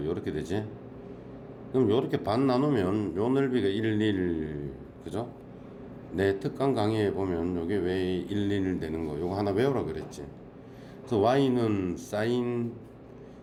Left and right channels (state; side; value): identical; both; correlation 1.00